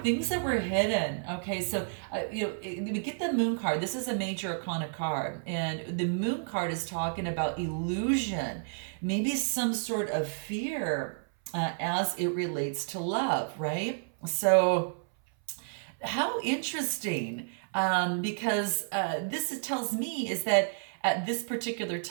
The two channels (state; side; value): silent; left; 57 dB below the other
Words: Things that were hidden, okay. So, we get the Moon card. This is a major arcana card. And the Moon card is talking about illusion, maybe some sort of fear as it relates to love, right? So how interesting, because this tells me is that at this particular